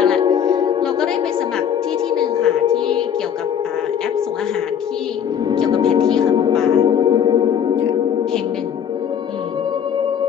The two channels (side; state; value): right; quieter; 8.6 dB